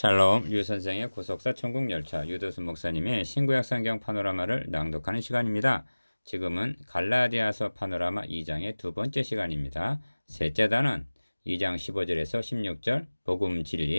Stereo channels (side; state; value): both; inverted; correlation -1.00